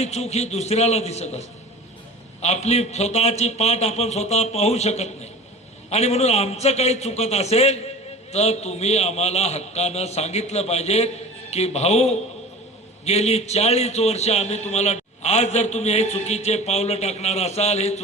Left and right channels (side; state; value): both; normal; correlation 0.38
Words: चूक ही दुसऱ्याला दिसत असते, आपली स्वतःची पाठ आपण स्वतः पाहू शकत नाही. आणि म्हणून आमचं काही चुकत असेल तर तुम्ही आम्हाला हक्कानं सांगितलं पाहिजे की भाऊ, गेली 40 वर्ष आम्ही तुम्हाला, आज जर तुम्ही हे चुकीचे पावलं टाकणार असाल, हे